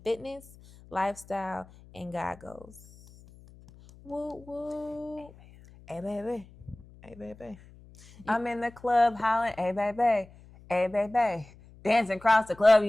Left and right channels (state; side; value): noise; left; hum, 23 dB below the sound